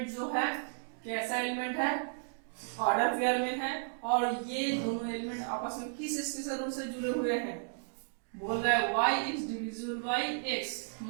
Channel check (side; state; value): left; silent; digital silence